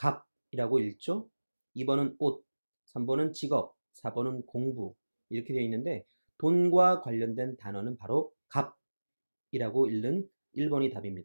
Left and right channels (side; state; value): both; inverted; correlation -1.00